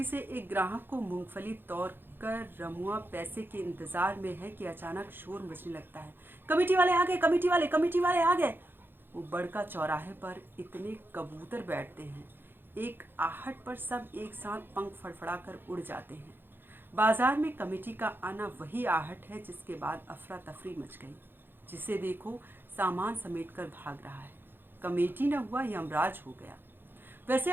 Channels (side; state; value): left; late; 0.10 ms